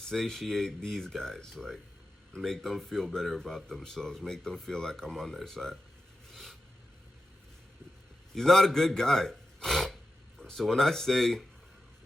these guys, like make them feel better about themselves, make them feel like I'm on their side. He's not a good guy. So when I say,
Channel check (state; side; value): normal; both; correlation 0.91